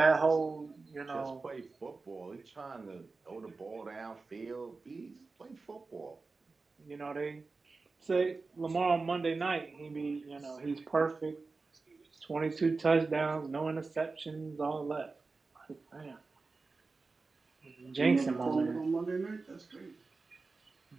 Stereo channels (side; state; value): left; quieter; 4.0 dB